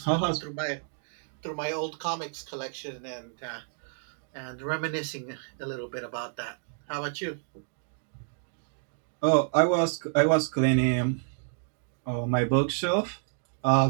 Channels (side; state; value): left; silent; digital silence